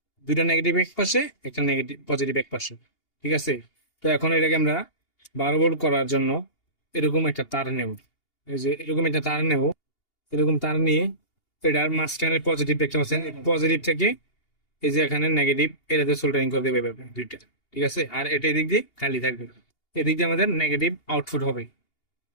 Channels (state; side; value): late; right; 2.8 ms